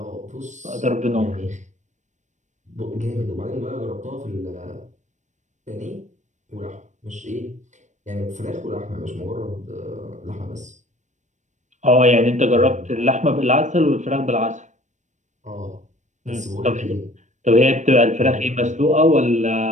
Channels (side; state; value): left; late; 0.35 ms